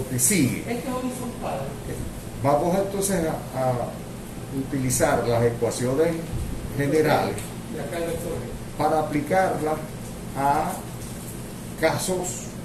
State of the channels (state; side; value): identical; both; correlation 1.00